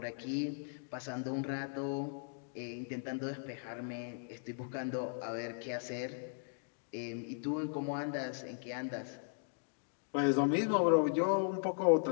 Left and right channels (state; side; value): silent; right; digital silence